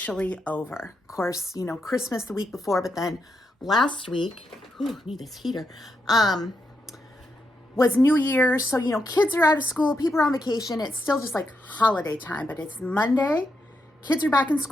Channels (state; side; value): normal; both; correlation 0.83